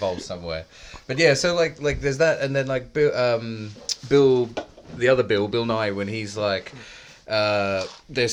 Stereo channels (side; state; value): both; identical; correlation 1.00